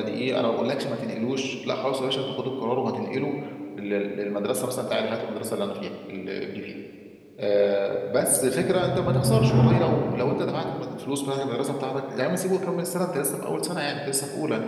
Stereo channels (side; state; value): both; identical; correlation 1.00